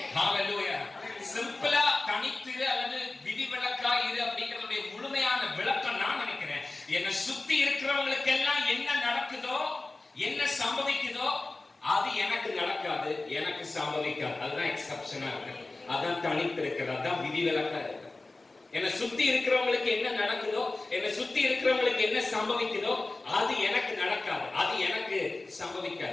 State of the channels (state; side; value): quieter; right; 3.2 dB